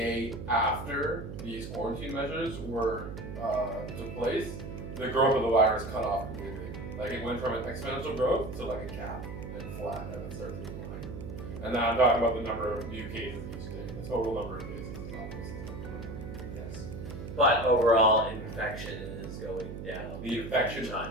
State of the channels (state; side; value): noise; right; hum, 8 dB below the sound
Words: after these quarantine measures took place, the growth of the virus cut off completely. It went from an exponential growth to a cap and flat, and it started to decline. And now I'm talking about the number of new cases each day. The total number of cases is almost. Yes. But overall, infection is going down. The infection